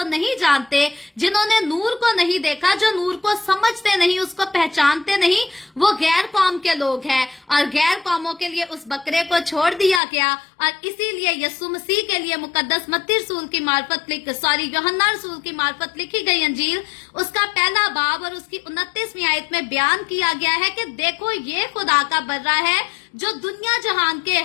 नहीं जानते, जिन्होंने नूर को नहीं देखा, जो नूर को समझते नहीं, उसको पहचानते नहीं, वो गैर कौम के लोग हैं। और गैर कौमों के लिए उस बकरे को छोड़ दिया गया। और इसीलिए यस्सु मसीह के लिए मुकद्दस मत्ती रसूल की मार्फत यूहन्ना रसूल की मार्फत लिखी गई अंजील, उसका पहला बाब और उसकी 29वीं आयत में बयान किया गया है कि देखो ये खुदा का बर्रा है जो दुनिया जहान के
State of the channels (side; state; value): right; drops out; at 10.0 s